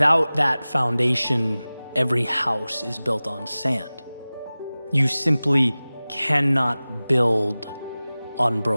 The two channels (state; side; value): inverted; both; correlation -0.98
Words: that foundation, every house is built on sand. You simply cannot build on